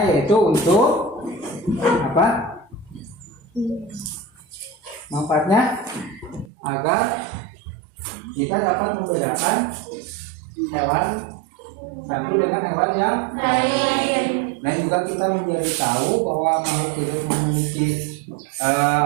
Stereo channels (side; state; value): left; drops out; at 6.5 s